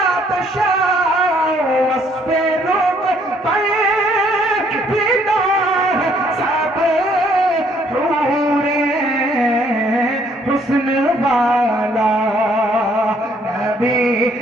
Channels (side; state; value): both; normal; correlation 0.65